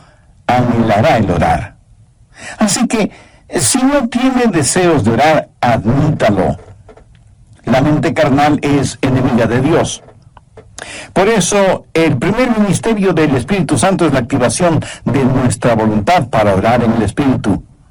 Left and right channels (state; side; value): identical; both; correlation 1.00